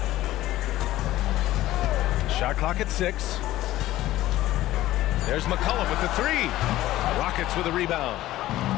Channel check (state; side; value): quieter; right; 15.3 dB